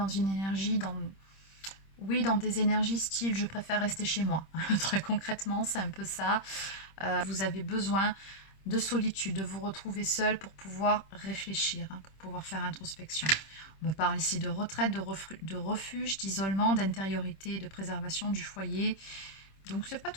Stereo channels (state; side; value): late; right; 26 ms